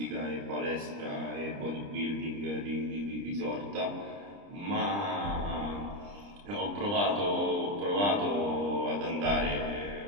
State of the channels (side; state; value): left; late; 30 ms